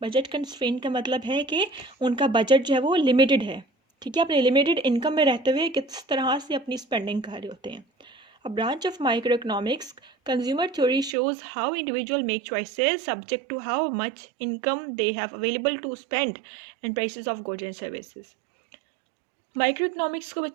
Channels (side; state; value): left; drops out; at 11.2 s